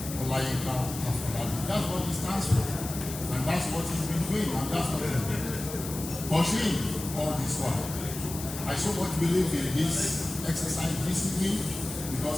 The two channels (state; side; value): noise; left; hiss, 10 dB below the sound